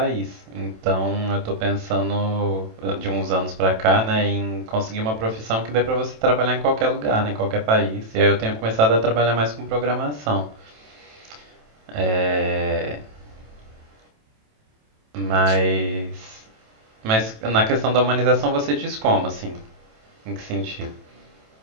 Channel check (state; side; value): late; left; 27 ms